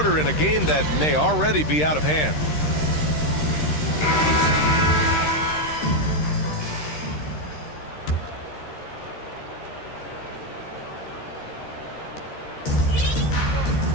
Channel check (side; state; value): right; late; 13 ms